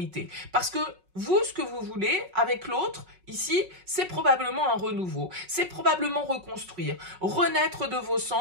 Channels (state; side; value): late; left; 5.4 ms